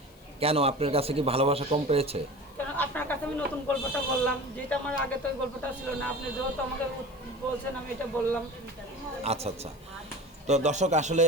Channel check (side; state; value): left; noise; hiss, 28 dB below the sound